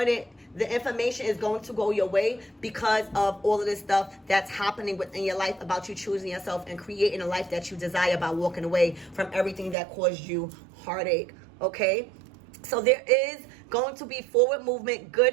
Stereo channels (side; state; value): left; drops out; at 9.8 s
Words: The information is going to go your way because of all of this stuff that's happening within your life about you choosing yourself and creating a life that you desire by walking away from everything that caused you heartache. Okay? So there is going to be forward movement,